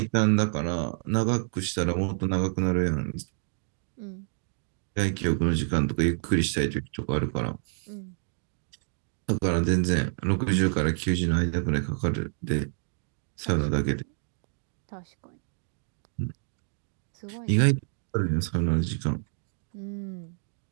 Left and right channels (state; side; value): silent; left; digital silence